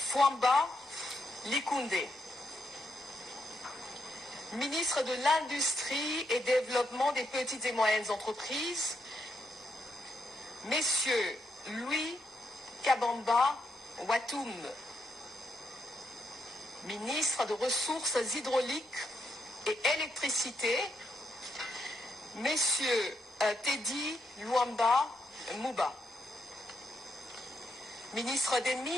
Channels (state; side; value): normal; both; correlation 0.79